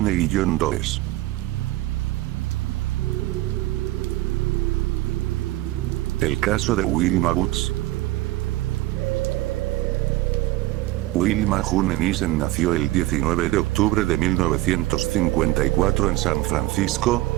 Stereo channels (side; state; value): left; quieter; 17.5 dB